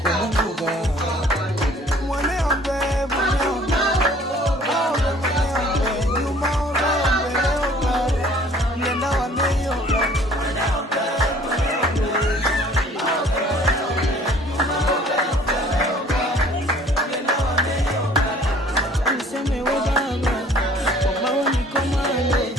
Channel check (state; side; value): normal; both; correlation 0.54